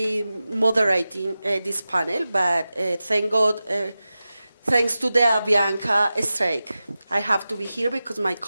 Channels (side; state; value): both; inverted; correlation -0.94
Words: moderating this panel, but thank God, thanks to the Avianca strike, I have to be here because my